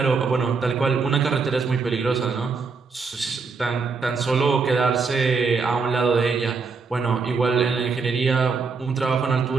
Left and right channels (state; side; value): quieter; left; 4.8 dB